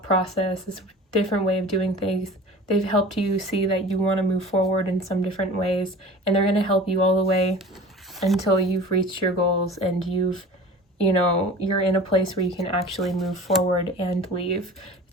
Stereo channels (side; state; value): both; normal; correlation 0.40